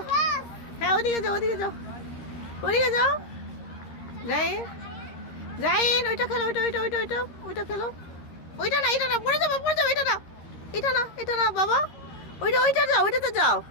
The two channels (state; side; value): late; right; 13 ms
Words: হ্যাঁ ওদিকে যাও ওদিকে যাও ওদিকে যাও। জাইন জাইন ওইটা খেলো ওইটা ওইটা ওইটা ওইটা ওইটা খেলো। ওইটা না এটা না পড়ে যাবো এটা না এটা না বাবা। ওইটা ওইটা যাও ওইটাতে যাও।